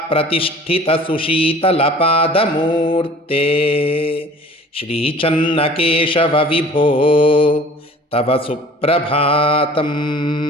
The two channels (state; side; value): normal; both; correlation 0.47